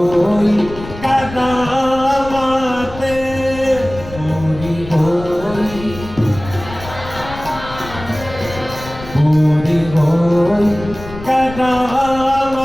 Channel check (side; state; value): left; noise; rumble, 14 dB below the sound